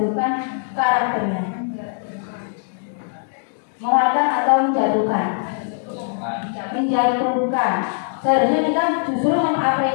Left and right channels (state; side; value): silent; right; digital silence